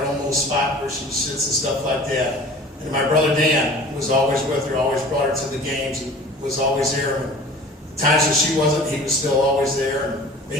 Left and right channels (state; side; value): normal; both; correlation 0.43